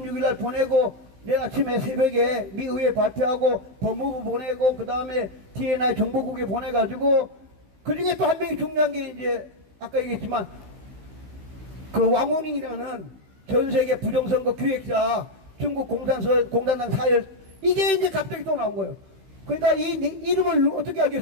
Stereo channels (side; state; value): left; late; 16 ms